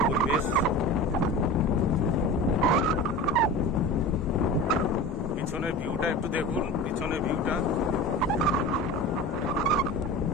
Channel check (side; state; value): both; normal; correlation 0.33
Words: পরিবেশ। পিছনের ভিউটা একটু দেখুন, পিছনের ভিউটা